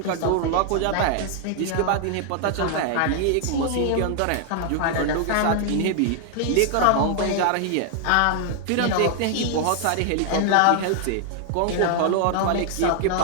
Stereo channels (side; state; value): both; different; correlation 0.00